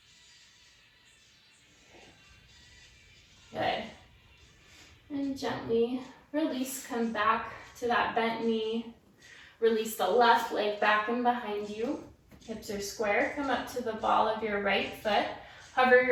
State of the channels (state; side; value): identical; both; correlation 1.00